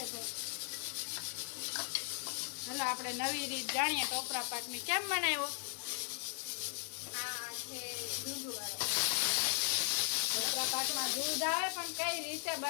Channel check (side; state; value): right; silent; 53 dB below the other